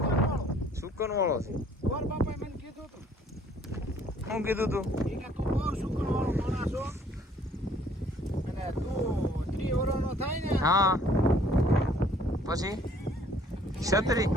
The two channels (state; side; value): normal; both; correlation 0.59